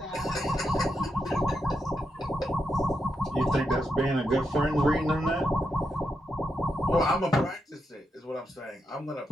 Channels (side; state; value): both; normal; correlation 0.84